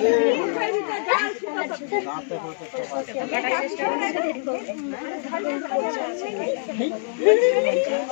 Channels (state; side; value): silent; right; 57 dB below the other